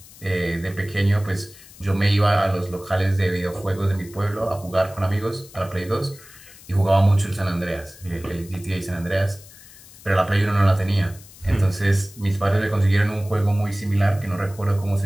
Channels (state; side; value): noise; left; hiss, 21 dB below the sound